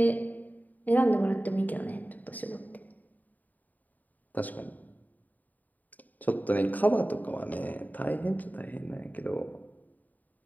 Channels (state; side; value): late; right; 0.081 ms